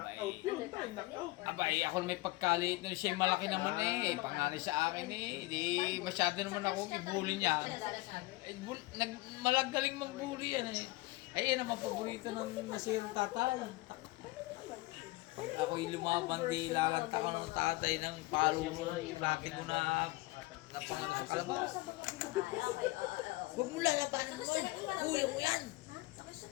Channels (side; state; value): right; quieter; 21.4 dB